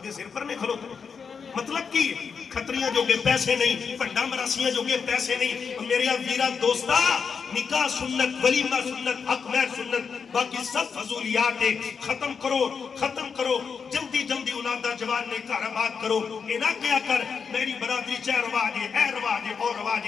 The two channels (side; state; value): right; quieter; 6.0 dB